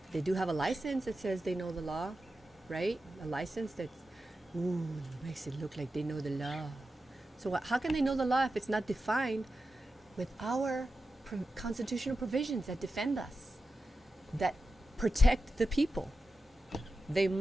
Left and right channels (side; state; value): both; normal; correlation 0.91